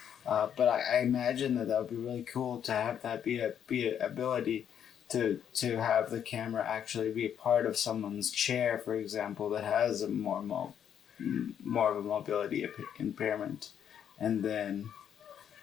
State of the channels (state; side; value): quieter; right; 8.9 dB